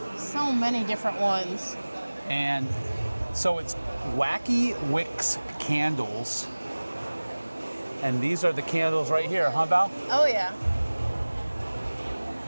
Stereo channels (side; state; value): both; inverted; correlation -1.00